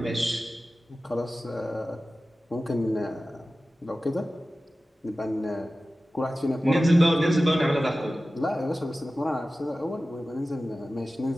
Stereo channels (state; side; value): normal; both; correlation 0.95